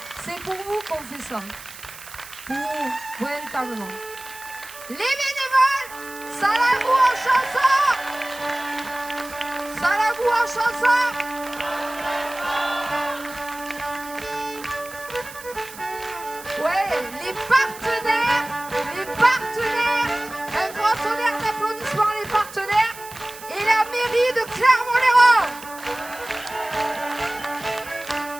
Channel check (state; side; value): noise; right; hiss, 16 dB below the sound